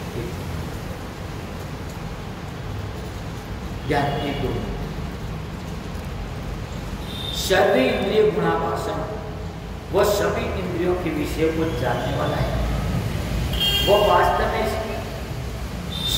ज्ञान एक दो सर्व इंद्रिय गुणाभाषण, वो सभी इंद्रियों के विषय को जानने वाला है। वो वास्तव में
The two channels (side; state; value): both; identical; correlation 1.00